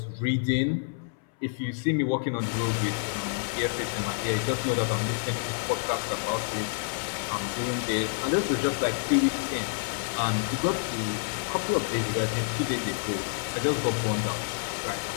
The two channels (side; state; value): right; silent; 59 dB below the other